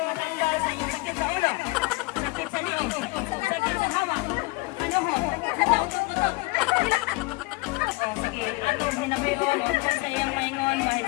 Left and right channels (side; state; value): right; quieter; 23.5 dB